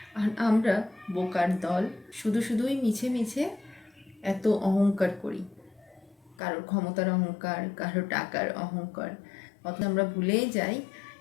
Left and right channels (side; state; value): right; drops out; at 6.4 s